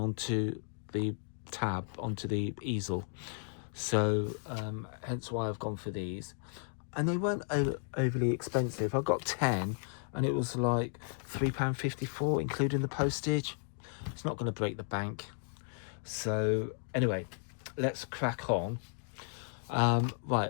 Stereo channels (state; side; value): silent; right; digital silence